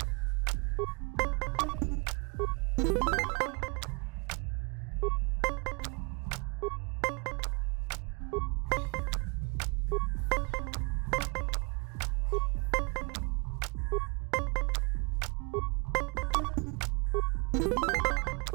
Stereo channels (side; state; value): left; quieter; 32.0 dB